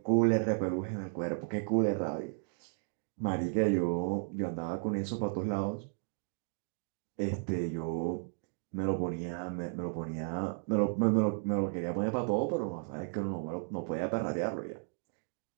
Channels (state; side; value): silent; left; digital silence